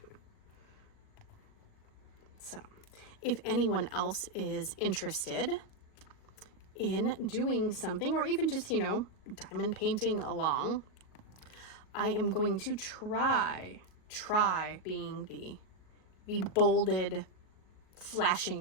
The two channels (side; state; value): right; late; 38 ms